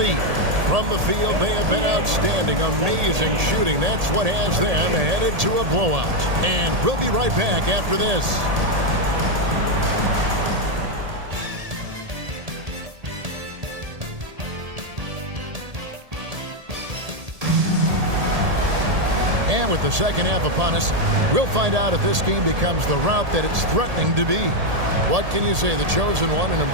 From the field, they have been outstanding, amazing shooting. That's what has them headed to a blowout. And we'll be right back after this. And with the second half upon us, we'll find out if this game becomes the route that it's threatening to be. What can you say? The chosen one, an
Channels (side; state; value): left; late; 1.8 ms